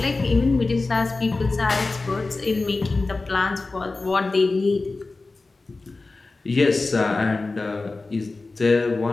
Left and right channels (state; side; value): quieter; right; 3.5 dB